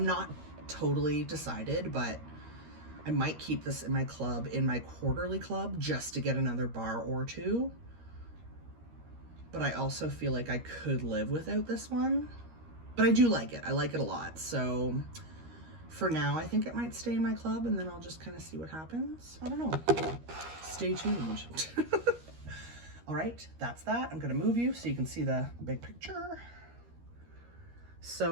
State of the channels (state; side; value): late; left; 13 ms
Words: totally decided, but I might keep this in my club, in my quarterly club, just to get another bar or two. But I also feel like I could live without this one. But I do like it. I like it a lot. So For now, I think it might stay in my club, and then I'll just kind of see what happens. I don't know. Stay tuned. All right, that's that. I'm gonna move you so you can see the big picture.